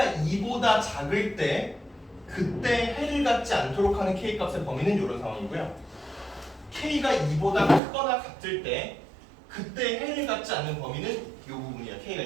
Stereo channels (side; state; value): left; drops out; at 7.8 s